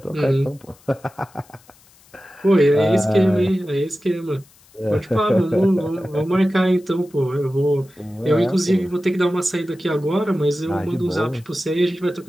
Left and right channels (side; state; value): left; noise; hiss, 28 dB below the sound